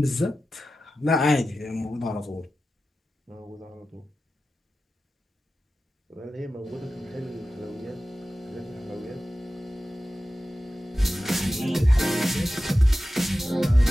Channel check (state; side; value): normal; both; correlation 0.94